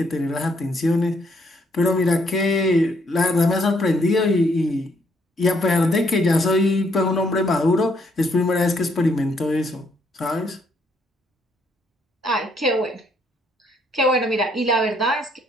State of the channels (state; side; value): normal; both; correlation 0.71